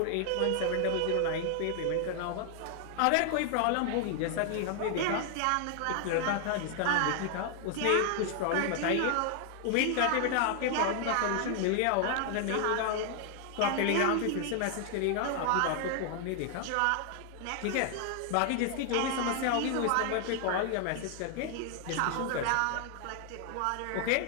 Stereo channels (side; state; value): both; different; correlation 0.00